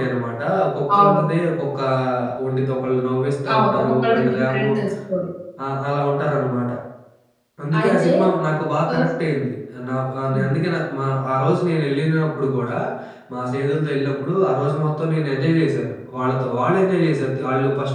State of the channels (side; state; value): both; identical; correlation 1.00